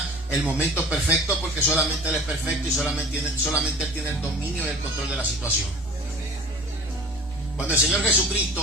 el momento perfecto, porque solamente Él es perfecto y solamente Él tiene el dominio y el control de la situación. Cuando el Señor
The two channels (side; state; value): both; normal; correlation 0.43